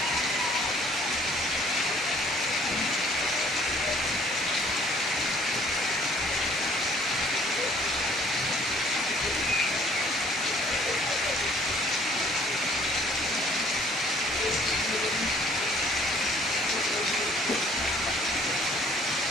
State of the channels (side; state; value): both; normal; correlation 0.58